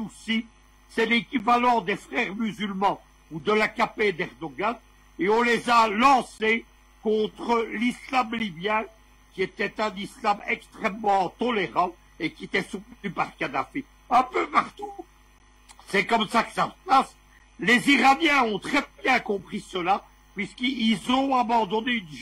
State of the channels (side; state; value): both; identical; correlation 1.00